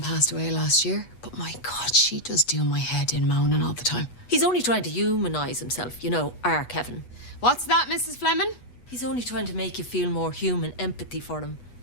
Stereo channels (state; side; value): late; right; 8.2 ms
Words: passed away last year, but my God, she does do my head in moaning all the time. He's only trying to humanise himself, our Kevin. What's that, Mrs. Fleming? He's only trying to make you feel more human empathy for him